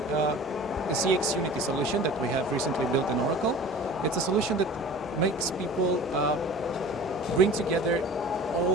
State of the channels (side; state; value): both; normal; correlation 0.41